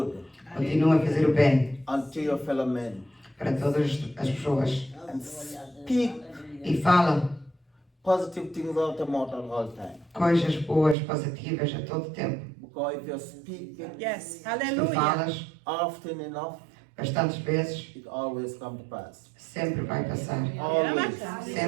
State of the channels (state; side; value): drops out; left; at 11.0 s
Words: Continua a fazer o bem unto your fellow men. para todas as pessoas. And speak E fala positive things out of mouth at all time. coisas boas, positivas a todo tempo. Because if you speak it Yes, Se tu hallelujah. falas often enough, bastantes vezes, it always comes to pass. sempre vai passar. Always.